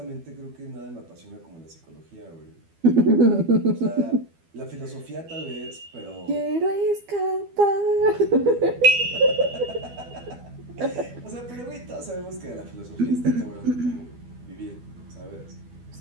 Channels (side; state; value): left; late; 12 ms